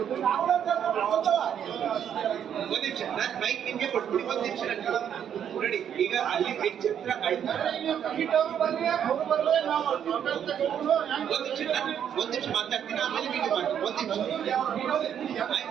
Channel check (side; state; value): left; quieter; 9.0 dB